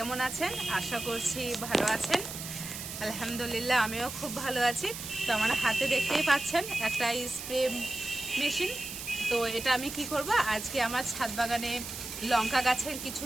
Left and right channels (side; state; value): right; noise; hiss, 8 dB below the sound